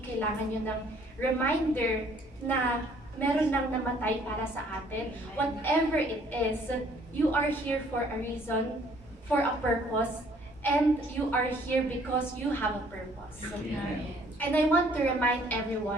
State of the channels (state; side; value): normal; both; correlation 0.60